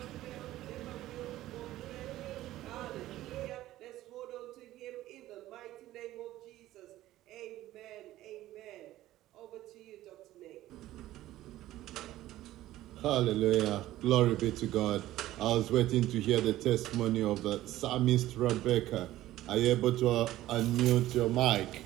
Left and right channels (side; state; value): left; quieter; 15.0 dB